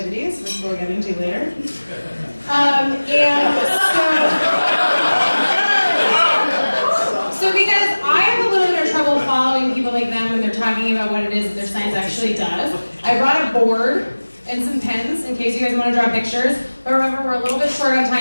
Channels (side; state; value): both; inverted; correlation -1.00